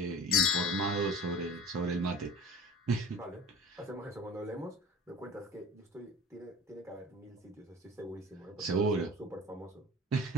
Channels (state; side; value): normal; both; correlation 0.40